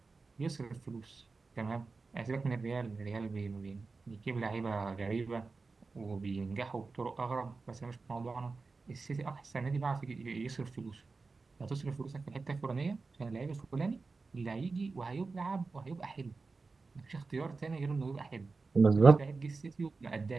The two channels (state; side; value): quieter; left; 4.1 dB